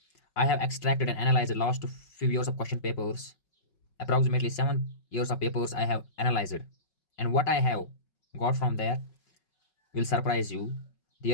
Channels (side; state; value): right; late; 5.4 ms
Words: I have extracted and analyzed the last few years of question papers. Approximately 7 years of papers I have analyzed. And what I have got from there will surprise you.